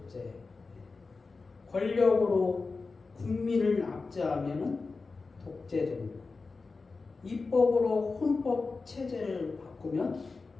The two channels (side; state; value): right; quieter; 4.1 dB